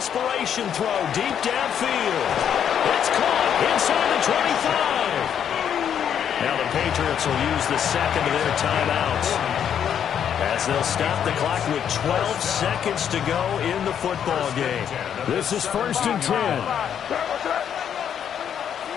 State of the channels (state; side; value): quieter; right; 8.8 dB